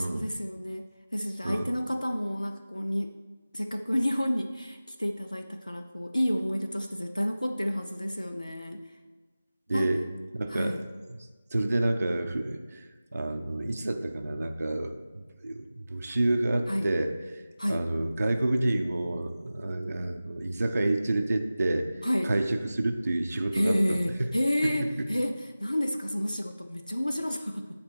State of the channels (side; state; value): both; inverted; correlation -0.97